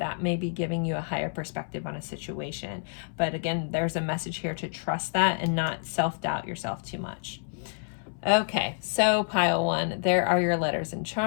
may be giving you a higher perspective on a situation. But again, there's a message here to trust that and not self-doubt yourself too much. Okay, so pile one, there are your letters and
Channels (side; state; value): right; silent; 59 dB below the other